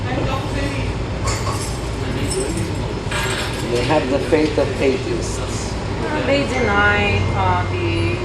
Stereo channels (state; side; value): identical; both; correlation 1.00